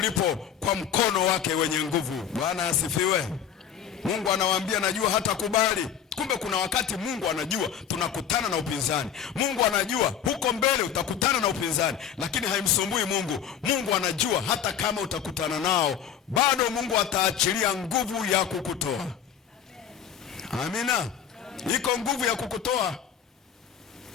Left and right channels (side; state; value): right; quieter; 8.6 dB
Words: kwa mkono wake wenye nguvu. Bwana asifiwe. Mungu anawaambia najua hatakubali. Kumbe kuna wakati Mungu anajua tunakutana na upinzani. Mungu anajua huko mbele utakutana na upinzani, lakini haimsumbui Mungu. Mungu anajua hata kama utakutana nao, bado Mungu ataachilia nguvu ya kukutoa. Amina. Iko nguvu ya kukutoa.